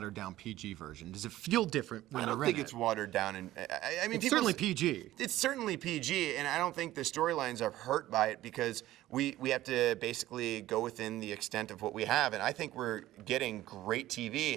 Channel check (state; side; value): quieter; left; 15.1 dB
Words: down PG version. Does it feel different when I don't you're think in it's it? watered down, and I mean, It's certainly PG. It's certainly PG, and I don't think the storylines are hurt by it because we have to basically go within the extent of what we have, and I think we're getting great